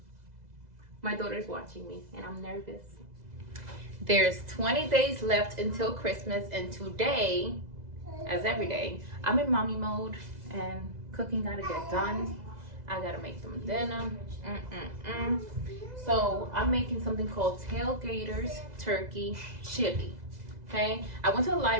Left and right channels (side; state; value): left; late; 2.0 ms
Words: my daughter's watching me and I'm nervous. There's 20 days left until Christmas, and today, as every day, I'm in mommy mode and cooking gotta get done. I gotta make them dinner. So I'm making something called Tailgaters Turkey Chili. Okay, I went to the